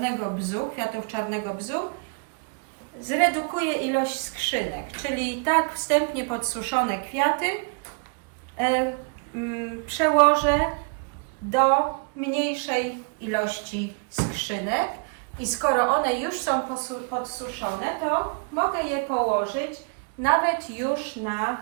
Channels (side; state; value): left; quieter; 35.5 dB